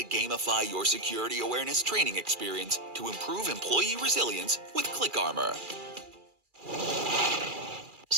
gamify your security awareness training experience to improve employee resilience with ClickArmor.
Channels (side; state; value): left; late; 2.4 ms